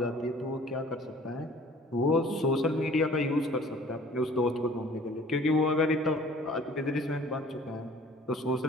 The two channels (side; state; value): both; normal; correlation 0.51